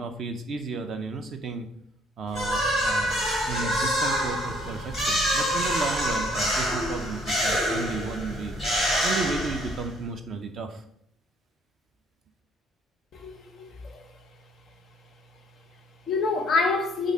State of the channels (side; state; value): both; normal; correlation 0.62